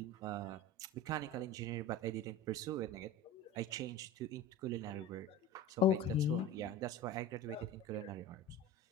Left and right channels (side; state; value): both; normal; correlation 0.33